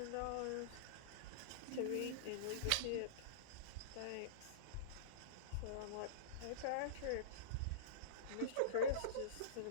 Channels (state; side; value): different; both; correlation -0.04